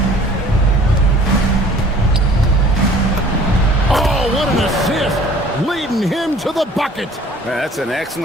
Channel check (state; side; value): normal; both; correlation 0.51